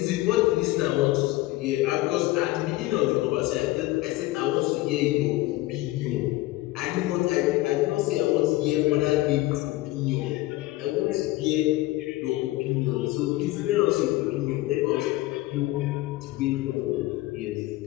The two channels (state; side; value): quieter; right; 18.1 dB